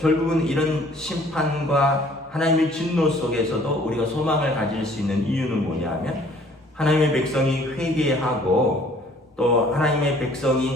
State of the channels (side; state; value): both; normal; correlation 0.56